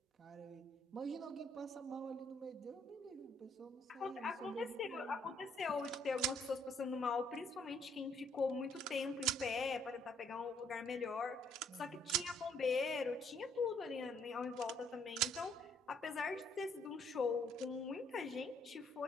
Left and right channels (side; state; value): both; normal; correlation 0.66